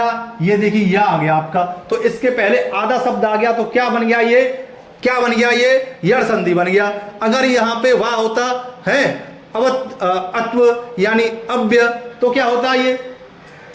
ये देखिए या आ गया आपका, तो इसके पहले आधा शब्द आ गया, तो क्या बन गया? ये क्या बन गया? ये यड़ संधि बन गया। अगर यहां पे वा होता है अत्व यानी अव्य, तो क्या होता? ये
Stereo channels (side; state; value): both; identical; correlation 1.00